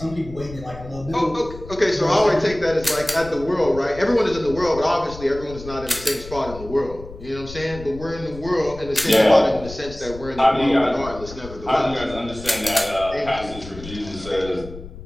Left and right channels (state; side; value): noise; left; rumble, 14 dB below the sound